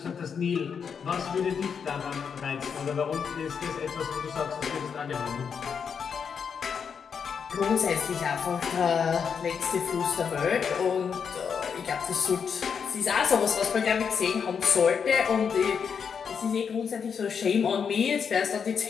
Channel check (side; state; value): right; quieter; 6.6 dB